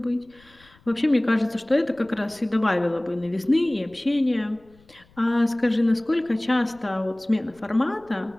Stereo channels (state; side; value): noise; left; rumble, 30 dB below the sound